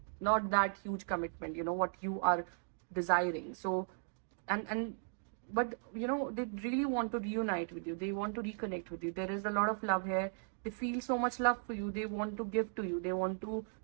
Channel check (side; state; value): left; silent; digital silence